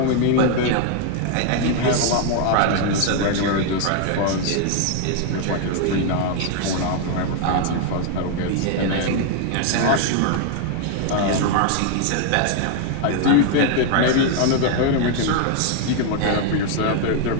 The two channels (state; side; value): different; both; correlation 0.00